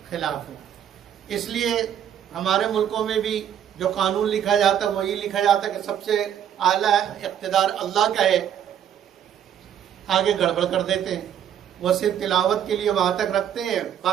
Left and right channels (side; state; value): left; quieter; 9.6 dB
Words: خلاف ہو۔ اس لیے ہمارے ملکوں میں بھی جو قانون لکھا جاتا ہے وہی لکھا جاتا ہے کہ سب سے اعلیٰ اقتدار اللہ کا ہے، آگے گڑبڑ کر دیتے ہیں، وہ صرف تلاوت کے لیے وہاں تک رکھتے ہیں،